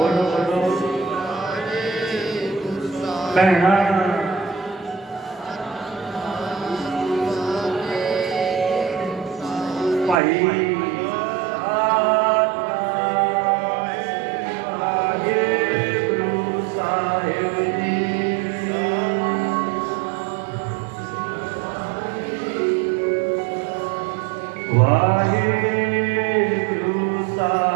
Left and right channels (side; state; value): left; drops out; at 10.2 s